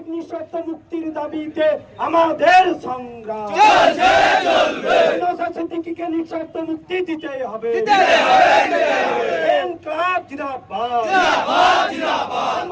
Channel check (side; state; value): both; identical; correlation 1.00